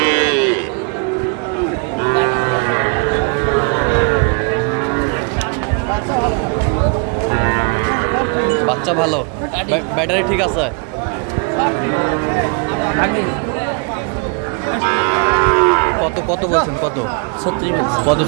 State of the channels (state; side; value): quieter; left; 34.5 dB